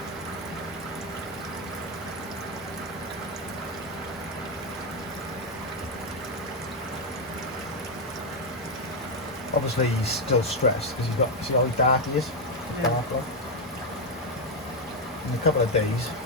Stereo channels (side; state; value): both; normal; correlation 0.04